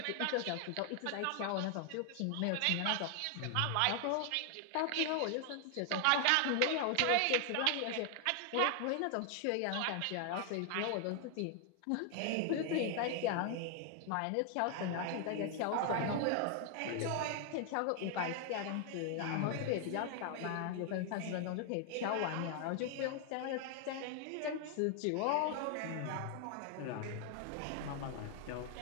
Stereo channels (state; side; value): different; both; correlation 0.00